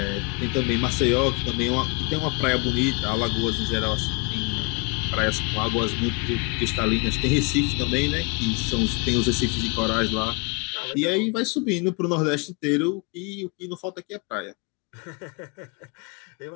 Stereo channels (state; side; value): quieter; right; 31.3 dB